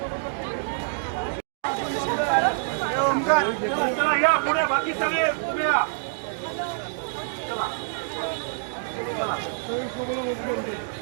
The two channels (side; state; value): left; silent; digital silence